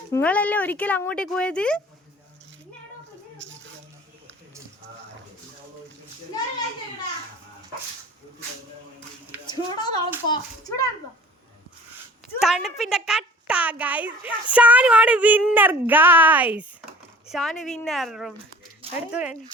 നിങ്ങളല്ലേ ഒരിക്കലും അങ്ങോട്ടേക്ക് പോയത്? തണുപ്പിന്റെ കട്ട ഗൈസ്. ഷാനുവാണ് വിന്നർ ഗൈസ്. ഷാനു വിന്നർ. എടുത്തു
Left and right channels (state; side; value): normal; both; correlation 0.47